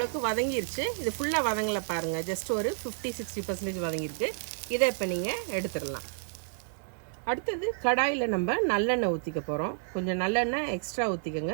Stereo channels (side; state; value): left; silent; 58 dB below the other